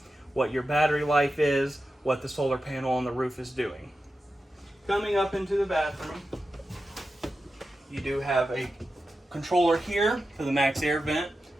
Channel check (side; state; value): both; normal; correlation 0.91